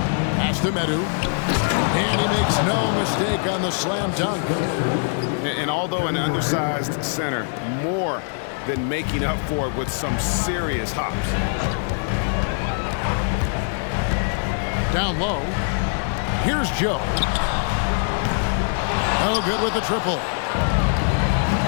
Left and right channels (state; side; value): silent; right; 64 dB below the other